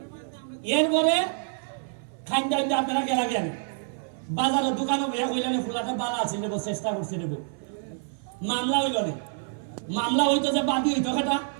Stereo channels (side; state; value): left; silent; 60 dB below the other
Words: এরপরে খাইন টাইম আপনারা গেলা গেলেন বাজারের দোকানে বইয়া কইলেন ফুলাটা বালা আছে নেবো চেষ্টা করছি নেবো মামলা হইল না মামলা হইতো যে বাদী হইতো সেটা